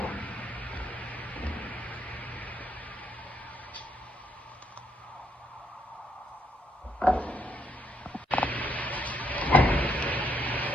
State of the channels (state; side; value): normal; both; correlation 0.74